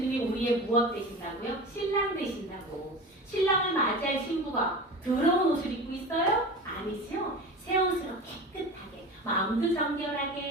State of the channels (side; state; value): both; normal; correlation 0.32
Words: 우리의 무엇 되신다고요? 신랑 되신다고. 신랑을 맞이할 신부가 더러운 옷을 입고 있어요? 아니죠. 새 옷으로 깨끗하게, 마음도